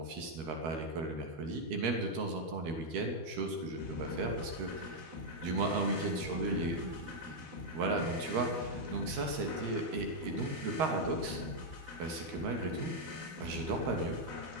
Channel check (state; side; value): late; left; 13 ms